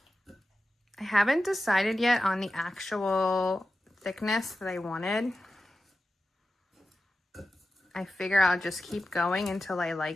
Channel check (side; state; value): both; normal; correlation 0.92